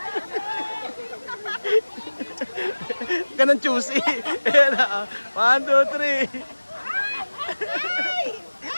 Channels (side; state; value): both; inverted; correlation -1.00